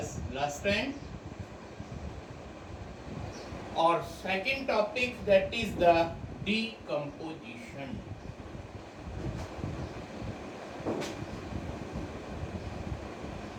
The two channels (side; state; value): both; identical; correlation 1.00